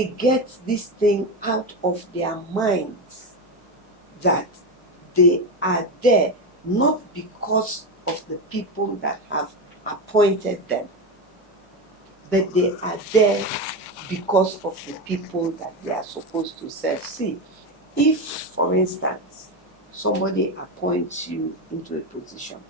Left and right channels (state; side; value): normal; both; correlation 0.16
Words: get this thing out of their minds that they are there not because of the people that have appointed them, but they are there because of the people that they are supposed to serve. See, if, for instance, somebody appoints you into a position